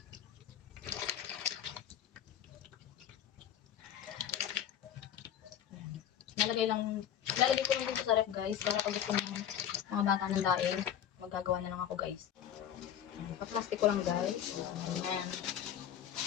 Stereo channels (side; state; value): right; quieter; 9.8 dB